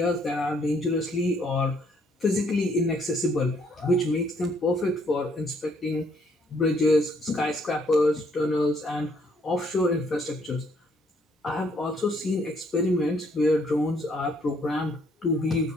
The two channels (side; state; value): both; normal; correlation 0.68